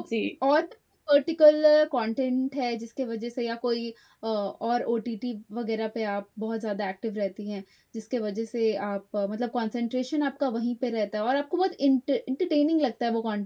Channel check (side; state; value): both; identical; correlation 1.00